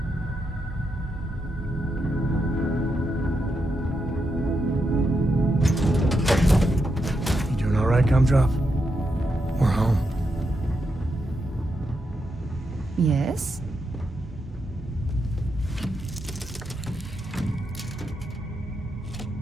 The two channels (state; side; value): normal; both; correlation 0.83